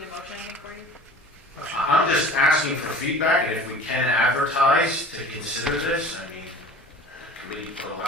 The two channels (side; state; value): both; normal; correlation 0.42